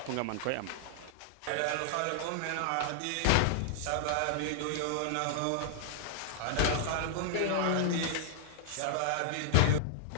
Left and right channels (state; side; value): different; both; correlation -0.01